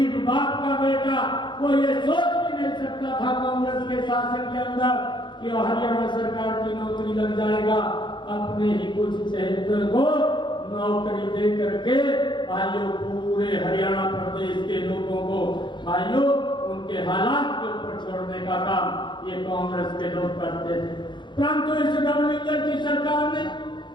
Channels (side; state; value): right; late; 0.23 ms